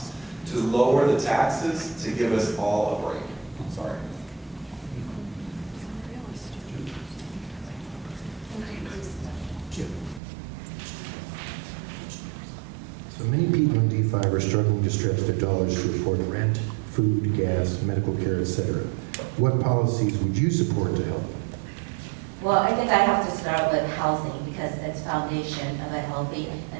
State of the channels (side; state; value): left; drops out; at 10.2 s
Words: to lower the taxes to give us all a break. Sorry. So many people in D5 are struggling to stretch their dollars to afford rent, food, gas, medical care, etc. What policies would you support to help? Well, I think I have to start with housing, because it's foundation of a healthy